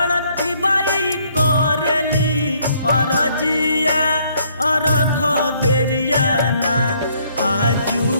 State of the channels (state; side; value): inverted; both; correlation -0.66